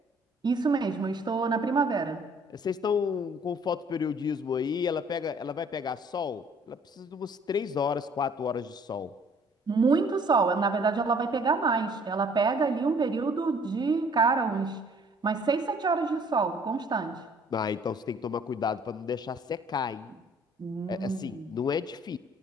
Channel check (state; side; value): normal; both; correlation 0.57